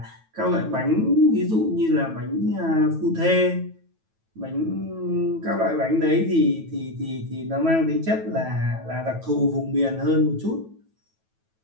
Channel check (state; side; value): late; left; 9.2 ms